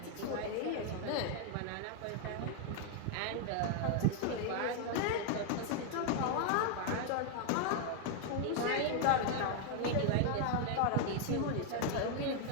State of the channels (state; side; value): different; both; correlation 0.00